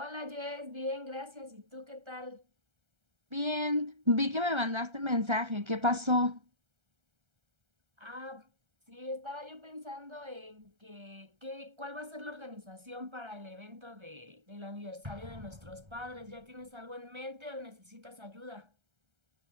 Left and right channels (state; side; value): late; left; 1.3 ms